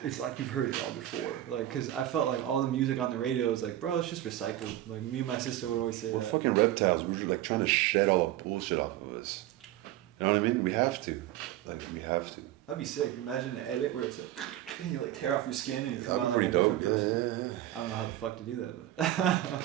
It's like you've heard it all before. Like, cause I felt like all the music on the radio was like, bro, it's just recycled. Like me and my sister would always say We're that. fucking reptiles. We're like trying to shed all the bullshit off of us. You know what I mean? We have to. Like we have to. That'd be sick. Imagine an edit where it's like, and you like tear off your skin and you come out like a different person. Yeah. I don't know how the fuck to do that,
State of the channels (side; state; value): left; quieter; 13.8 dB